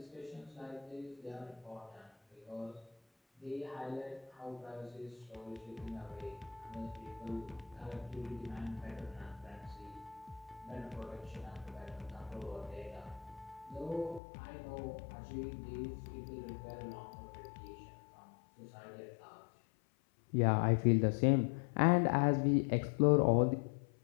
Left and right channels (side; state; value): right; drops out; at 14.2 s